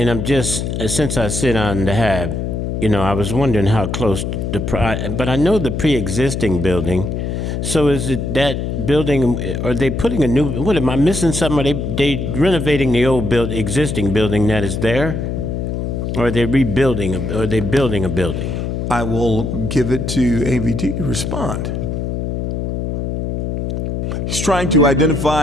just, since I sit on the HAB, I was wondering how close but I know the pre-existing building. So is it that building, are they putting a new, what, am I missing something? Are they renovating the old existing building that is there? Or are they rebuilding, or are they building a building? I will give it to AVT to respond. He's trying to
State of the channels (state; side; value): noise; left; hum, 2 dB below the sound